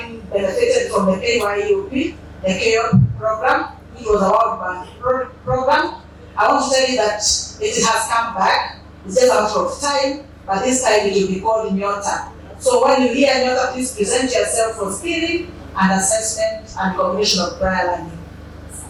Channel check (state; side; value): identical; both; correlation 1.00